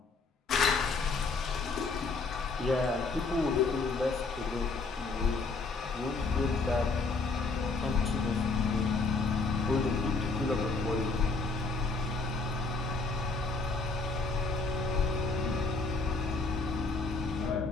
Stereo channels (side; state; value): right; quieter; 3.9 dB